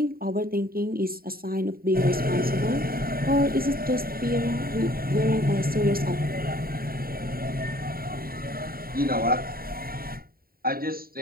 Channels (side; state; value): left; late; 0.43 ms